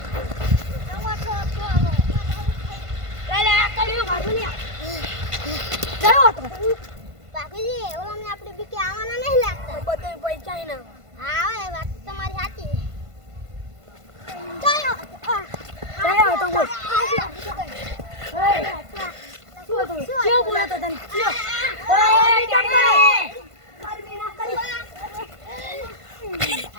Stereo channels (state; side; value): late; left; 1.5 ms